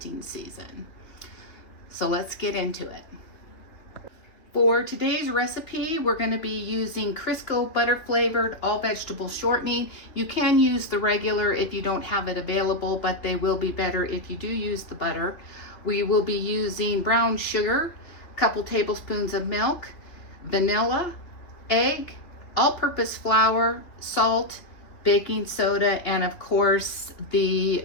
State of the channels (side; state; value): right; late; 3.0 ms